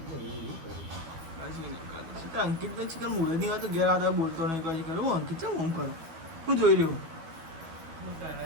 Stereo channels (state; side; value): late; left; 12 ms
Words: અંકિત ને ચિકન મૂળે નહીં આવતું ઘેર આવતા બોલતો નહીં કહે કરું હું અંકિત છે હું કરું હું જોઈ રહ્યું